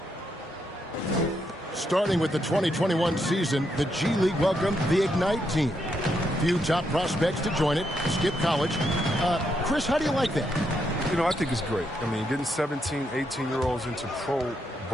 Starting with the 2021 season, the G League welcomed the Ignite team. Few top prospects to join it. Skip college. Chris, how do you like that? You know, I think it's great. I mean, getting 17, 18-year-olds into pro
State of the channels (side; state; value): both; normal; correlation 0.79